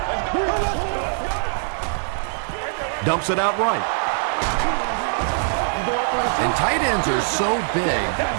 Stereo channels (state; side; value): silent; left; 64 dB below the other